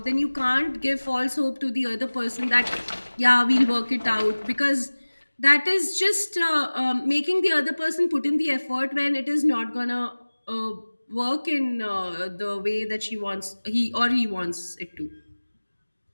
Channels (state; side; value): inverted; both; correlation -1.00